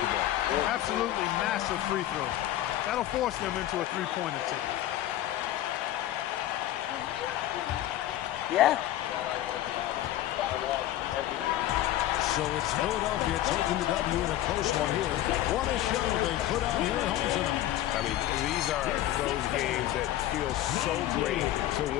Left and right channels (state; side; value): quieter; right; 13.6 dB